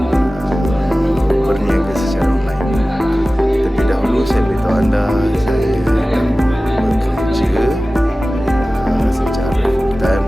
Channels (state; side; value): normal; both; correlation 0.96